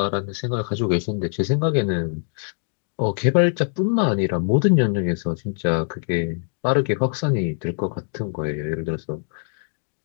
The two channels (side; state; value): right; silent; digital silence